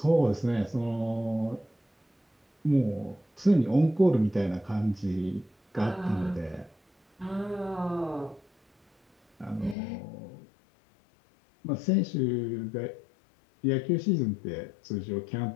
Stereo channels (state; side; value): drops out; right; at 9.8 s